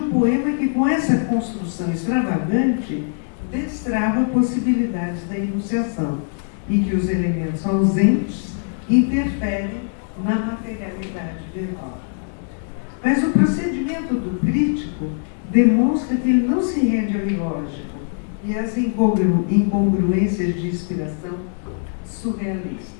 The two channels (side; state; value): right; silent; digital silence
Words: poema que, com essa construção extravagante, destrava possibilidades da enunciação e que os elementos ausentes interferem na materialidade verbal. Mas o procedimento do crítico demonstra que ele não se rende ao ilógico e às incongruências de inspiração surrealista,